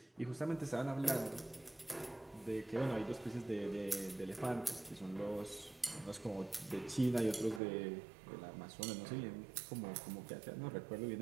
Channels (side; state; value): left; drops out; at 7.6 s